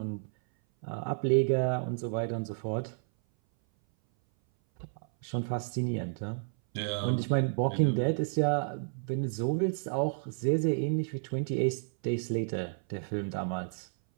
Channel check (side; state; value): left; silent; 57 dB below the other